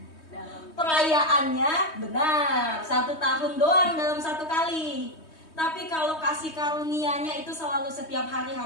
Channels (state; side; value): late; right; 3.2 ms